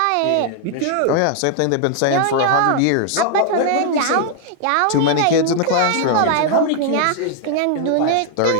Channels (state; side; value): different; both; correlation 0.00